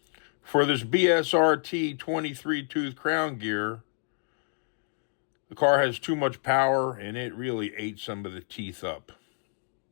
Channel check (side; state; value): right; silent; digital silence